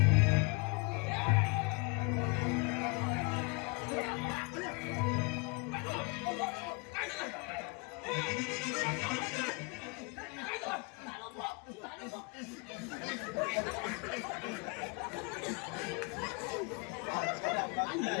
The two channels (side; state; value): right; quieter; 31.5 dB